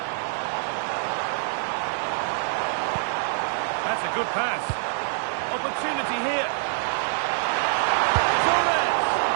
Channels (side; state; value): left; silent; 61 dB below the other